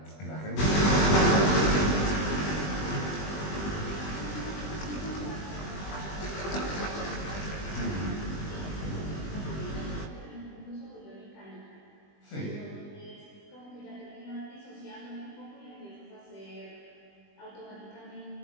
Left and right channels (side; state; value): right; late; 20 ms